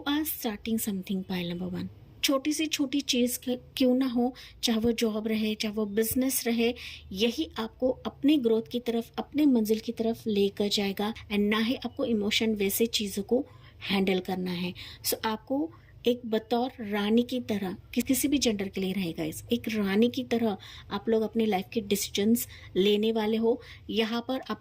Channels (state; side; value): identical; both; correlation 1.00